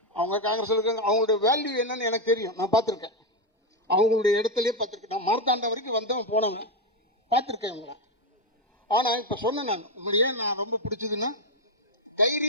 அவங்க காங்கிரஸ் இருக்காங்க, அவங்களுடைய வேல்யூ என்னன்னு எனக்கு தெரியும், நான் பார்த்துருக்கேன். அவங்களுடைய இடத்துலையே பார்த்துருக்கேன். நான் மார்த்தாண்டம் வரைக்கும் வந்தவன் போனவன், பார்த்துருக்கேன் இவங்களை. ஆனால் இப்போ சொன்னேன் நான், உங்களையே நான் ரொம்ப பிடிச்சதுன்னா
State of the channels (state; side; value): normal; both; correlation 0.07